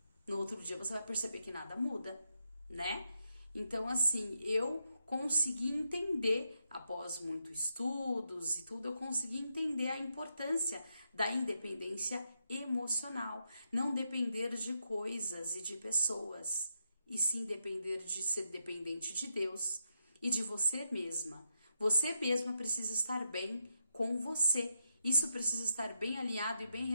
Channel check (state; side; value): inverted; both; correlation -0.83